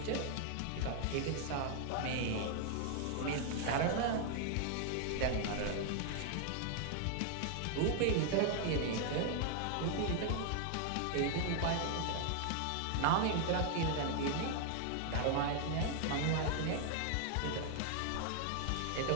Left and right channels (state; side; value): different; both; correlation 0.00